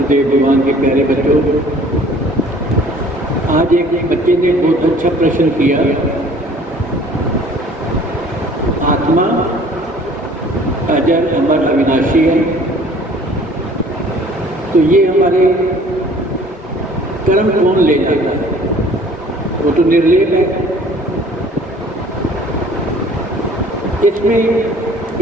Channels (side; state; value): both; normal; correlation 0.52